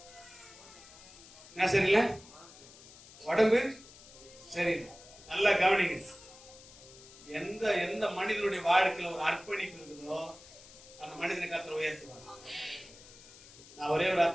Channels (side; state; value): left; noise; hiss, 20 dB below the sound